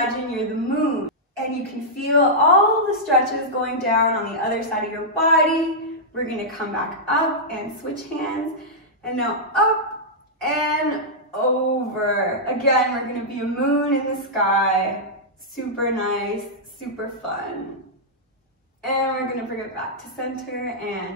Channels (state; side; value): normal; both; correlation -0.10